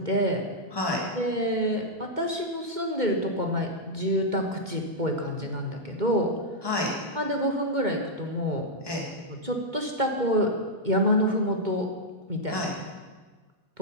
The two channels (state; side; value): late; left; 2.2 ms